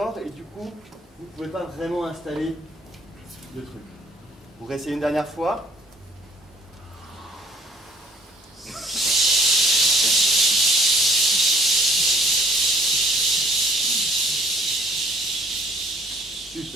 et du coup, vous ne pouvez pas vraiment installer le truc. Vous réessayez une dernière fois.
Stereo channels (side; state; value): both; normal; correlation 0.58